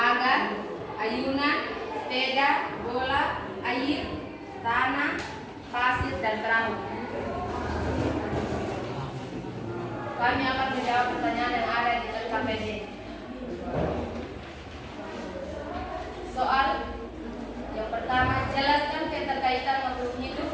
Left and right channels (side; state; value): both; identical; correlation 1.00